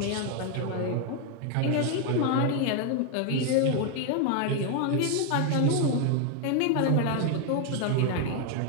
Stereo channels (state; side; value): different; both; correlation 0.01